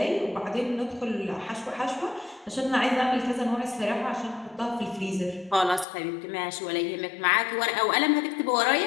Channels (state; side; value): drops out; right; at 5.9 s